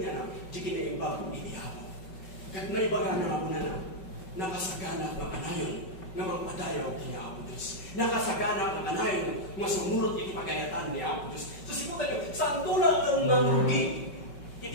na, di kinaimbag iti ako. Kat naibaga na ako na nakasagana ng anayon, nga magpadayaw kini ako Diyos. Nakasagana ng anayon, nga sumurot iti pagayatan ni ako Diyos. So siputan nyo, saan tulad ng marugi,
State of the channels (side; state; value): right; late; 5.3 ms